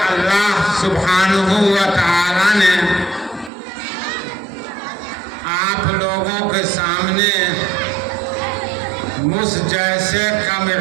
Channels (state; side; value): drops out; left; at 3.5 s